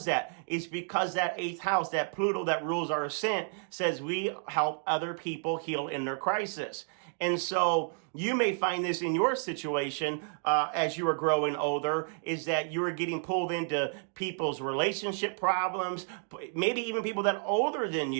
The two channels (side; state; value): left; silent; 57 dB below the other